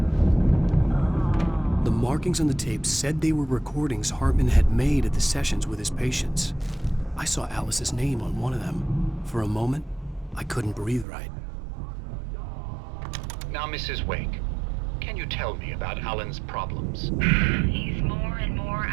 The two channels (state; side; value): drops out; left; at 11.1 s